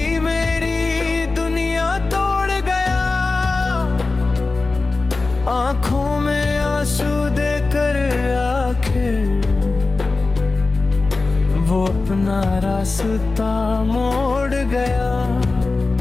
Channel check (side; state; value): right; quieter; 3.6 dB